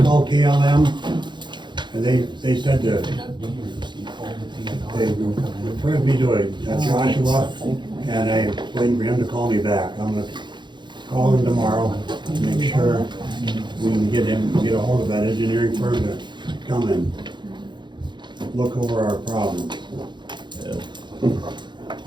called KLM, and they said that they referred me to a Joshua, and I waiting for him to call me back. I'm gonna call him tomorrow, make sure we can get a hold of that engineering firm to come and look over our problems.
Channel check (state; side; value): late; left; 0.22 ms